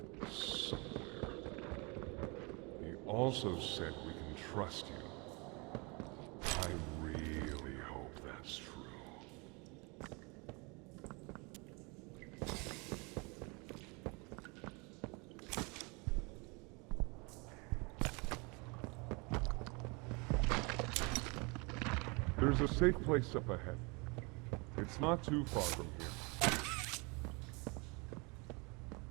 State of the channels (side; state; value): left; quieter; 29.5 dB